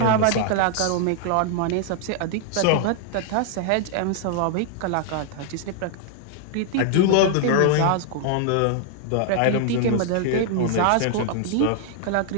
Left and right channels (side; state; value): both; different; correlation 0.00